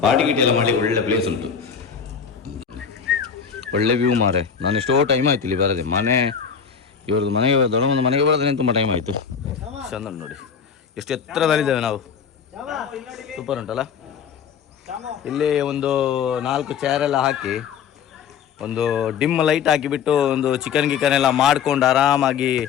ಪಾರ್ಟಿ ಗಿಟಿ ಎಲ್ಲ ಮಾಡಲಿಕ್ಕೆ ಒಳ್ಳೆ ಪ್ಲೇಸ್ ಉಂಟು, ಒಳ್ಳೆ ವ್ಯೂ ಮಾರೆ. ನಾನು ಎಷ್ಟೋ ಟೈಮ್ ಆಯ್ತು ಇಲ್ಲಿ ಬರದೆ. ಮನೆ ಇವ್ರದ್ದು ಮನೆಗೆ ದೊಡ್ಡಮ್ಮನ ಮನೆಗೆ ಬರೋದ್ರೆ ತುಂಬ ಟೈಮ್ ಆಯಿತು. ಚಂದ ನೋಡಿ, ಎಷ್ಟು ಎತ್ತರದಲ್ಲಿದ್ದೇವೆ ನಾವು. ಸೂಪರ್ ಉಂಟಲ್ಲ. ಇಲ್ಲಿ ಒಂದು 4 ಚೇರೆಲ್ಲ ಹಾಕಿ, ಒಂದು ಡಿಮ್ ಲೈಟ್ ಹಾಕಿಬಿಟ್ಟು, ಒಂದು ಚಿಕನ್ ಗಿಕನ್ ಎಲ್ಲ ಮಾಡ್ಕೊಂಡು ಆರಾಮಾಗಿ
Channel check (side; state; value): right; quieter; 7.0 dB